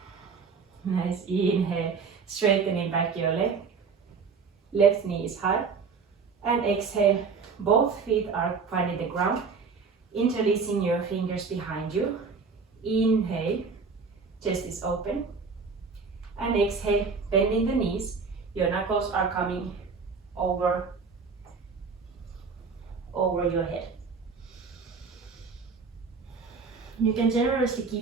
Nice, inhale, straightening back your leg. Left knee is high. And exhale, both feet are finding the ground. Interlacing your fingers behind you. Inhale, chest is open. And exhale, bending the knees. Your knuckles are coming over your head. You can generously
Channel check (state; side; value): quieter; left; 5.1 dB